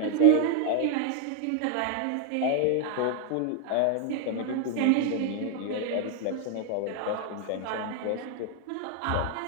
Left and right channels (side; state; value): both; different; correlation 0.00